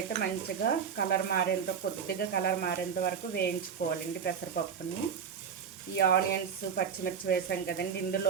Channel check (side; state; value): left; quieter; 7.0 dB